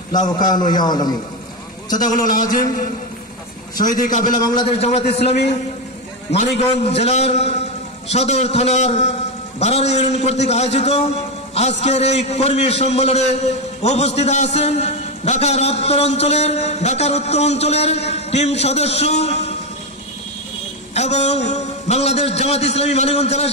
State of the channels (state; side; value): normal; both; correlation 0.10